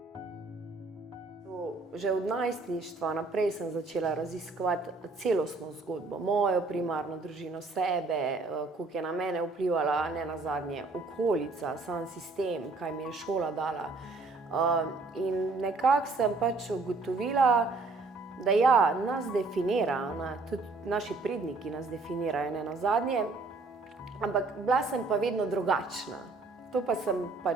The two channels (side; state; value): left; quieter; 3.6 dB